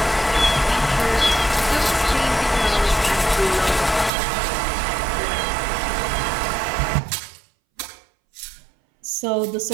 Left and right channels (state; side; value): drops out; left; at 4.1 s